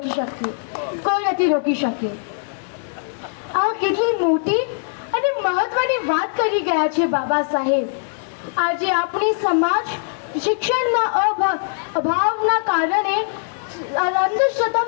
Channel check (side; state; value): right; silent; digital silence